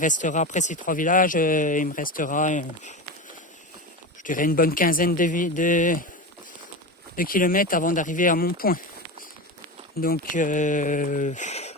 après ces 3 villages, il me restera, je dirais une bonne quinzaine de km avant d'arriver à mon point. Donc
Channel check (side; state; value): both; normal; correlation 0.23